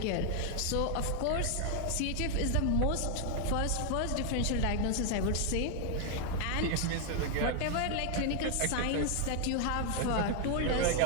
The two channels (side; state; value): both; different; correlation 0.00